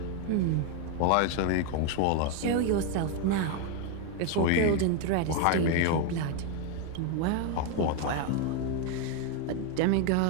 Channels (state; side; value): different; both; correlation 0.01